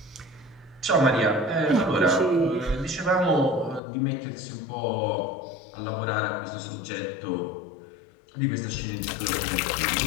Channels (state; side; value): drops out; right; at 3.8 s